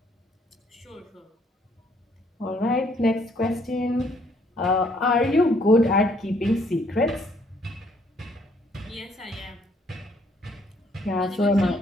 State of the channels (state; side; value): normal; both; correlation 0.66